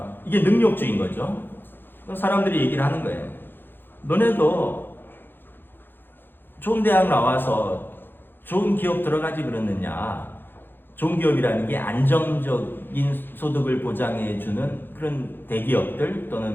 이게 능력주의인 거죠. 사람들이 얘기를 하는 거예요. 너네도 좋은 대학 나와서 좋은 기업 들어가지 그러느냐. 좋은 기업이라는 게 안정적인 소득을 보장해주는 그런 대기업들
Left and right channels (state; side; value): late; right; 0.099 ms